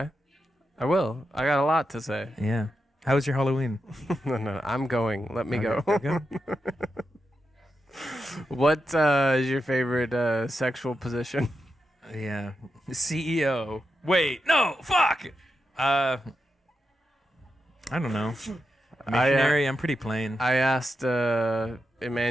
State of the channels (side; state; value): both; normal; correlation 0.87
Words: I will. I got a lot to say. Yeah. How was your Halloween? No, I'm going. Let me go. Okay. What is your favorite sexual position? Yeah. CEO. Wait, no, fuck. I don't know. Missionary, I'm pretty plain. I asked